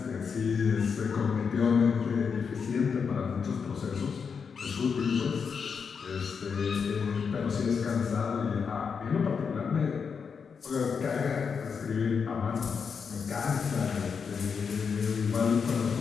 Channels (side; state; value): right; quieter; 6.0 dB